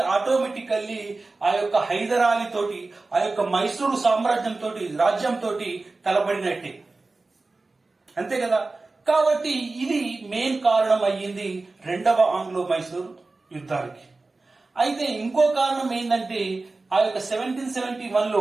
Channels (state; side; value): quieter; left; 3.5 dB